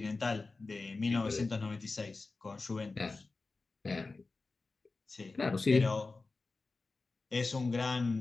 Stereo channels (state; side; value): quieter; right; 3.7 dB